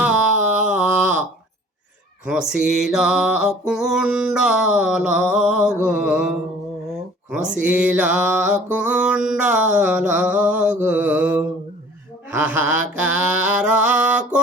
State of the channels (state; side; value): normal; both; correlation 0.50